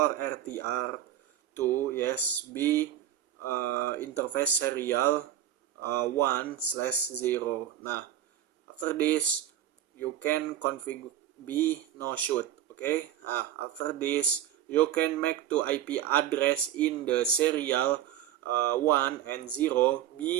RTR to yes be interface serial 1/0. Nah, after this you can configure be no shoot. Okay. After this you can make to IP address in the serial 1 and 0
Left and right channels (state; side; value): quieter; left; 11.3 dB